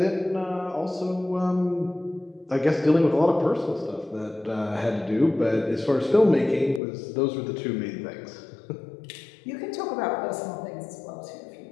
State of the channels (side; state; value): right; drops out; at 6.8 s